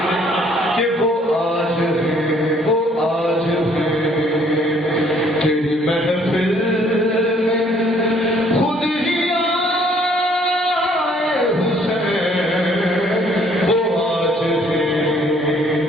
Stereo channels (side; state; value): both; normal; correlation 0.62